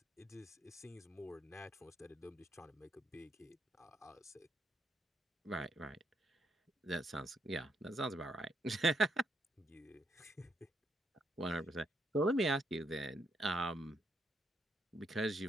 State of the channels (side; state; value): both; normal; correlation 0.76